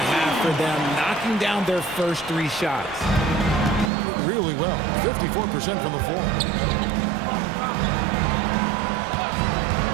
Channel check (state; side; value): drops out; left; at 3.9 s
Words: for them, knocking down their first 3 shots. Really well. 54% from the floor.